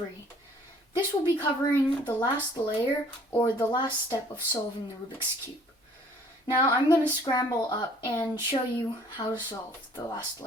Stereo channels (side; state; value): both; normal; correlation 0.56